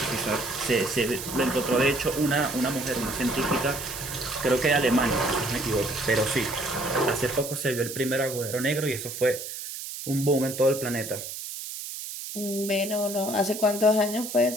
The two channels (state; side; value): noise; right; hiss, 8 dB below the sound